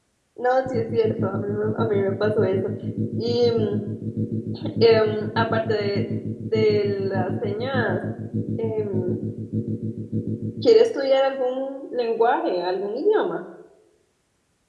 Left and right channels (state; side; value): identical; both; correlation 1.00